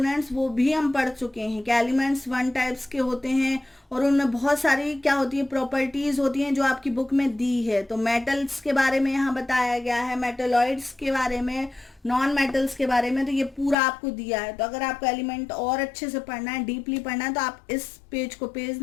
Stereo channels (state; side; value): drops out; right; at 13.8 s